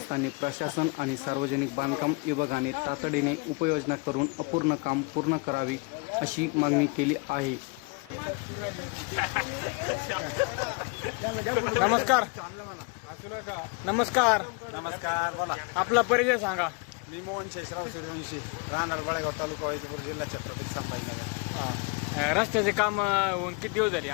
प्रशासन आणि सार्वजनिक बांधकाम विभागाने तातडीने उपाययोजना करून अपूर्ण काम पूर्ण करावी अशी मागणी केली आहे. नमस्कार. नमस्कार. नमस्कार. बोला. आपला परिचय सांगा. मी मोहन शेषराव सूर्यवंशी, राहणार बळेगाव तालुका वैजापूर जिल्हा छत्रपती संभाजीनगर. रस्त्याचे काम होऊन किती दिवस झाले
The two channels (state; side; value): quieter; right; 30.4 dB